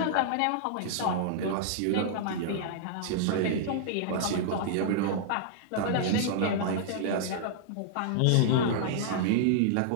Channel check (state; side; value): different; both; correlation -0.01